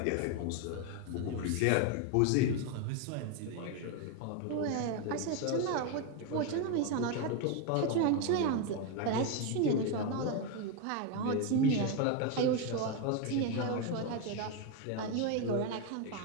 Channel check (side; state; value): both; different; correlation 0.02